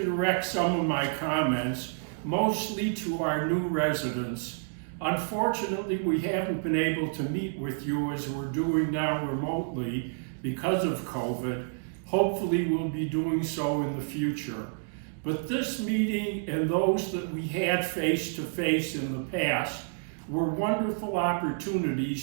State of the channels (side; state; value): left; silent; digital silence